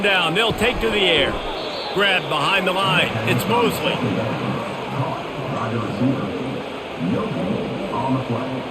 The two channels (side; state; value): both; identical; correlation 1.00